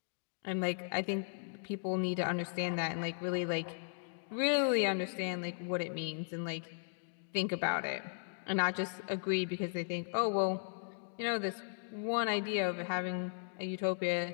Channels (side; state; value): right; silent; digital silence